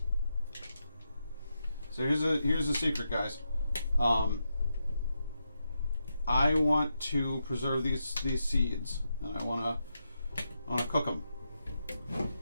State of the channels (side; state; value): both; inverted; correlation -0.85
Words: So here's a secret, guys. I want to preserve these seeds, and I want to cook them.